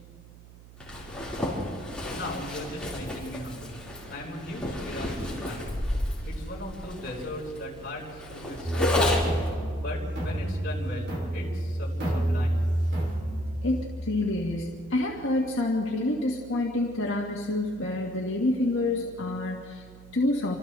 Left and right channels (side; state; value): right; noise; hum, 19 dB below the sound